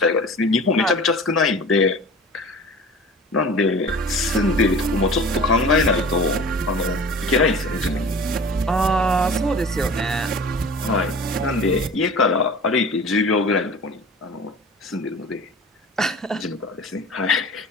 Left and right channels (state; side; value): normal; both; correlation 0.40